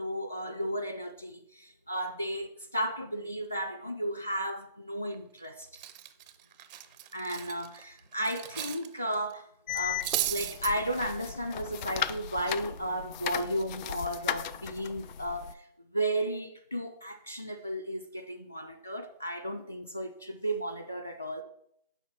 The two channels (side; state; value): both; inverted; correlation -0.60